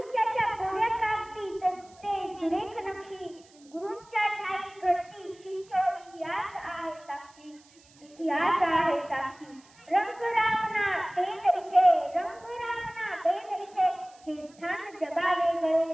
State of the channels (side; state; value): right; noise; hiss, 27 dB below the sound